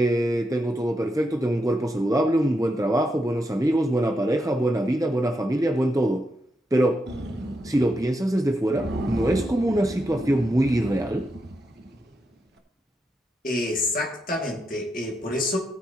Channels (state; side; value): normal; both; correlation 0.84